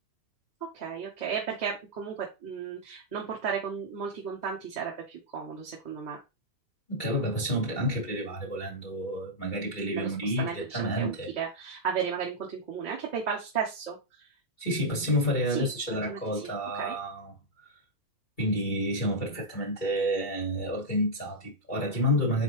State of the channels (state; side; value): late; right; 2.3 ms